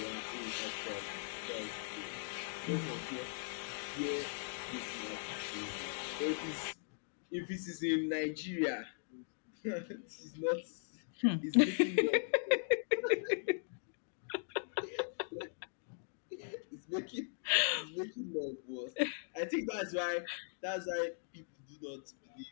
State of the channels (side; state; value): right; silent; digital silence